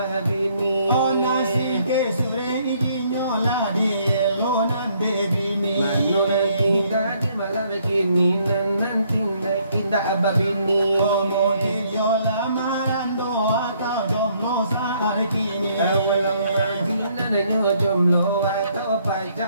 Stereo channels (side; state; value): both; inverted; correlation -0.67